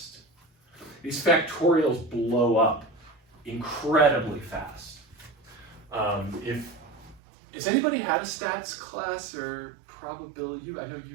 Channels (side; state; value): left; drops out; at 7.2 s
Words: These factorials blow up incredibly fast. Has anybody had a stats class or probability? I know